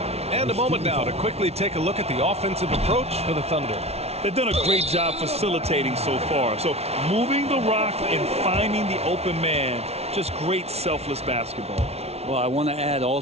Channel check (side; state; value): left; late; 0.31 ms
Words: And a moment now to quickly take a look at the offensive approach for the Thunder. They've done a great job facilitating so far. So moving the rock and finding the open man, just great selfless basketball. Well, I want to add